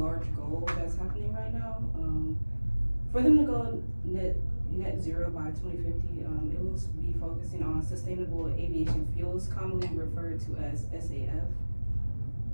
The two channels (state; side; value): inverted; both; correlation -1.00